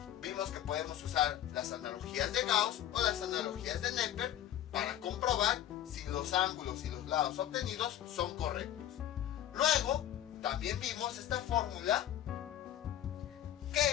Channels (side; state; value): right; quieter; 11.8 dB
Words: Vimos que podemos usar las analogías de Gauss o las analogías de Neper para comprobar si los ángulos y los lados obtenidos son correctos. Luego, también vimos esta fórmula